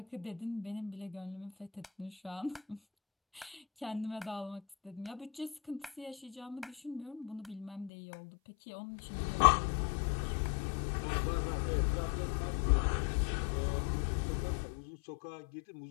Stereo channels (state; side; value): drops out; right; at 7.9 s